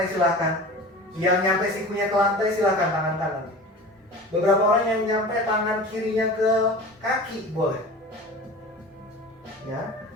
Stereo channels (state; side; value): normal; both; correlation 0.36